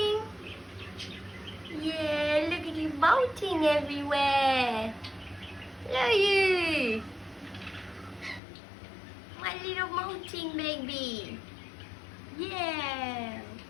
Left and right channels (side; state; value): right; drops out; at 8.4 s